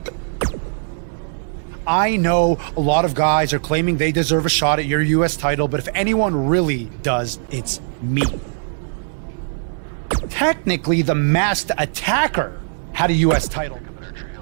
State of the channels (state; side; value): silent; left; digital silence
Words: I know a lot of guys are claiming they deserve a shot at your U.S. title, but if anyone really does, it's me. Technically, the masked attacker had a U.S. title.